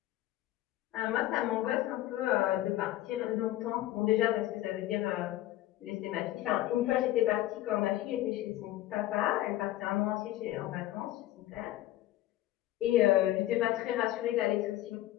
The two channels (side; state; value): right; quieter; 15.1 dB